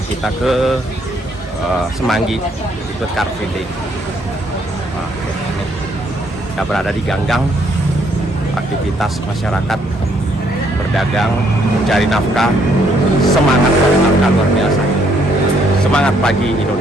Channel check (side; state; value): both; normal; correlation 0.69